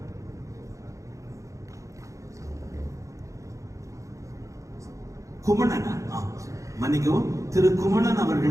குமணன் மன்னிக்கவும், திரு குமணன்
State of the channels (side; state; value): left; late; 0.15 ms